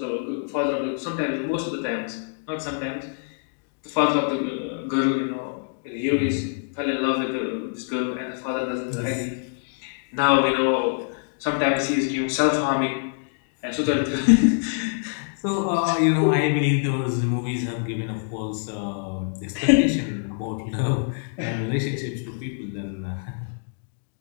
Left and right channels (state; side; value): silent; right; digital silence